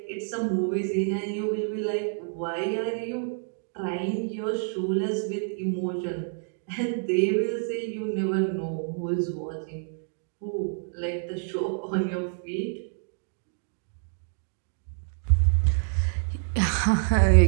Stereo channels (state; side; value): silent; left; digital silence